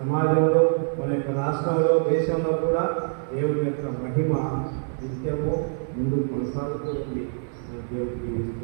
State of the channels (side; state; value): left; silent; 62 dB below the other